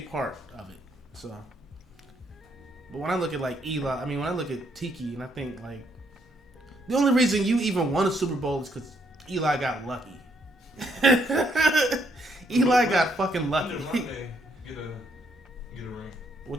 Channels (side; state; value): both; normal; correlation 0.72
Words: part of it. So, but when I look at like Eli, when I look at Tiki, and I think like the only reason you even won a Super Bowl is because Eli got lucky. Eli got fucking lucky. Get a ring.